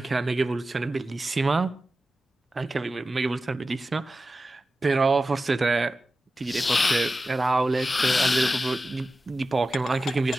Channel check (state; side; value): normal; both; correlation 0.94